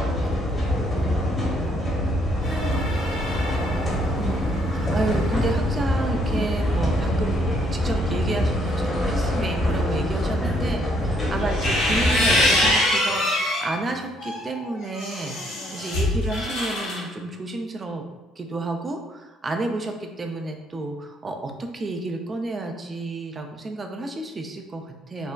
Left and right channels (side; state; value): both; normal; correlation 0.69